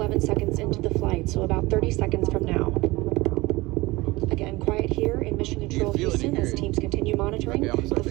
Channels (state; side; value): quieter; left; 21.3 dB